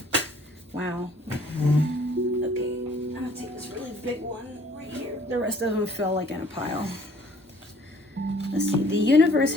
Wow. Okay, I'm going to take this really big one right here. The rest of them fell like in a pile. Let's see. The universe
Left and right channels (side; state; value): both; normal; correlation 0.57